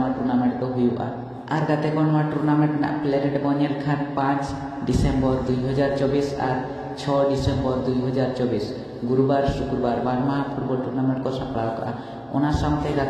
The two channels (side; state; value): both; identical; correlation 1.00